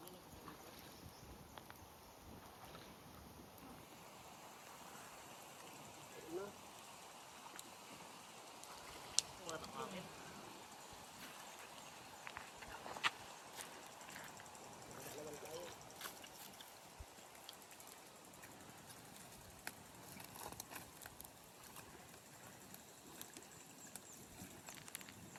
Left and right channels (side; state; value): both; identical; correlation 1.00